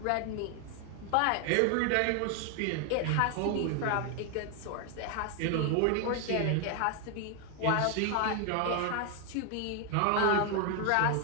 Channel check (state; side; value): different; both; correlation 0.01